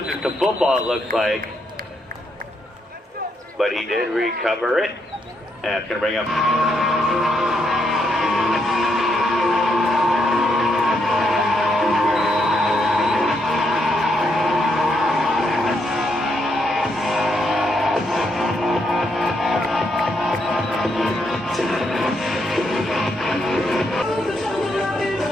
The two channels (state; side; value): normal; both; correlation 0.77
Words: the football, it looks like. But he did recover it. And it's going to bring up...